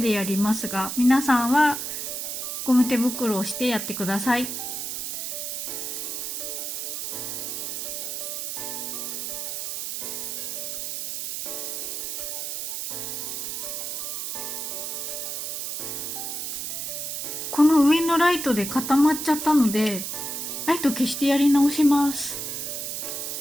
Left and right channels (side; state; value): right; noise; hiss, 4 dB below the sound